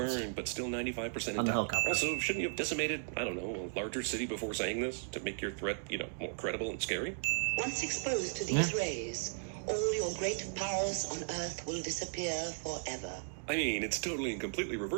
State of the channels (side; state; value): left; silent; digital silence